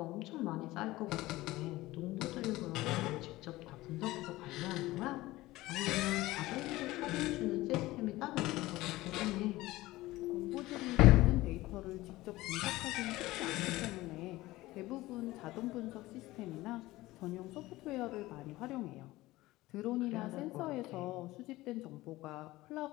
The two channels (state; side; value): quieter; right; 18.3 dB